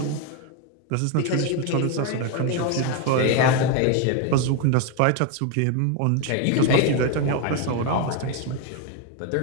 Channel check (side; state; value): both; different; correlation 0.02